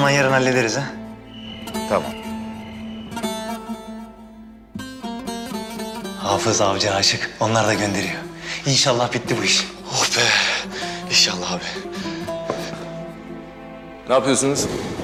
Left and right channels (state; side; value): identical; both; correlation 1.00